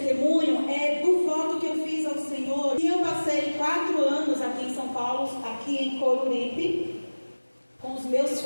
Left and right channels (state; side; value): inverted; both; correlation -1.00